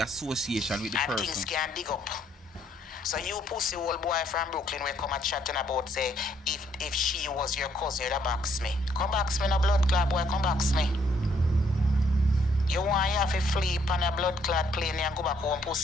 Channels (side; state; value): both; normal; correlation 0.69